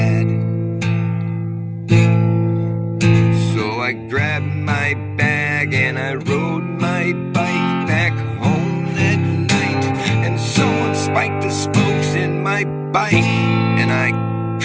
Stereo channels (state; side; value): identical; both; correlation 1.00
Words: So I grabbed my bag and I rode my bike back home that night. And someone spiked the spokes in my bike and I